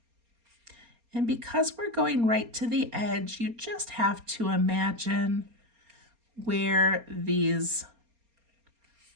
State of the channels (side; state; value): left; late; 4.3 ms